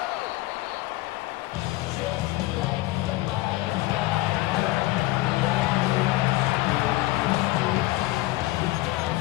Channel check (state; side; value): quieter; right; 18.6 dB